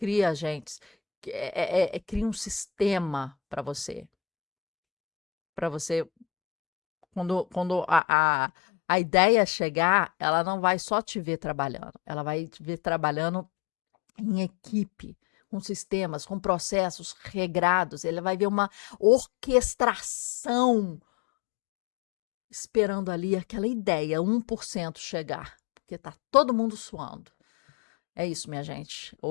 agentes, crie um sistema para você. Para você, quando a ideia chegar, ela não vai só te ver trabalhando, ela vai te ver trabalhando em equipe, com sistemas, com processos regrados. Ele vai ver uma orquestração esperando ali aquela ideia, 1% chegar, porque está todo mundo suando. É isso, minha gente.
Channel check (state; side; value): drops out; right; at 8.0 s